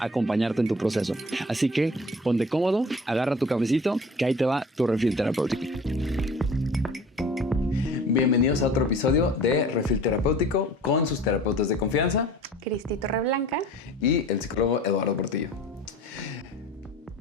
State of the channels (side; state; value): both; normal; correlation 0.44